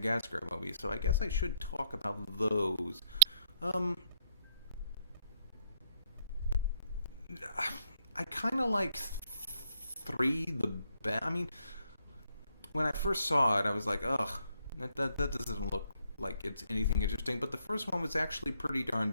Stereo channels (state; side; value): inverted; both; correlation -0.71